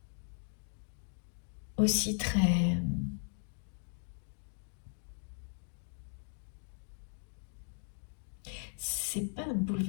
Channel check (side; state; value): right; silent; 52 dB below the other